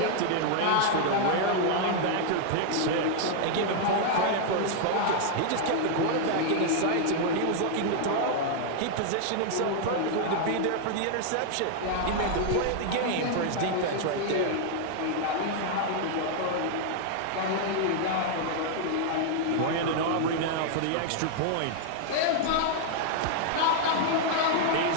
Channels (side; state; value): both; different; correlation 0.00